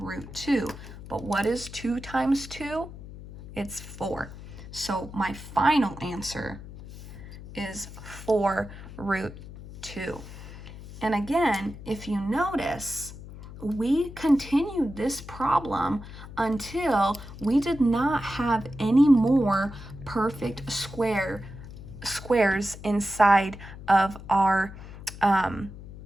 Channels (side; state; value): left; noise; hum, 14 dB below the sound